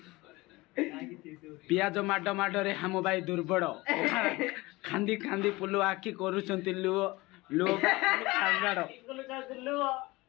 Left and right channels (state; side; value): quieter; right; 21.6 dB